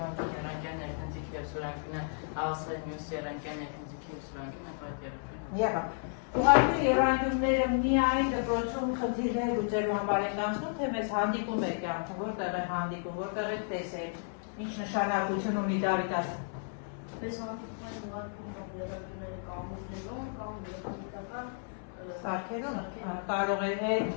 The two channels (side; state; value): right; silent; 56 dB below the other